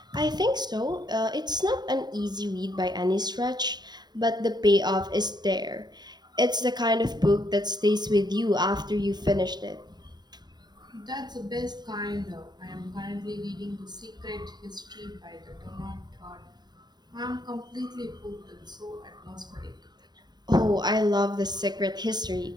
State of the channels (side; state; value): left; late; 0.20 ms